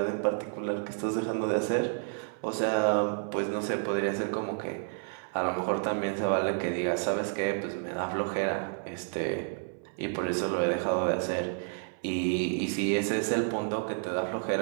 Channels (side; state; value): left; silent; 58 dB below the other